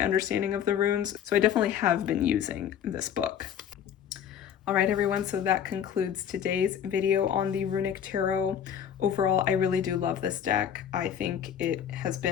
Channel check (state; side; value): quieter; right; 9.0 dB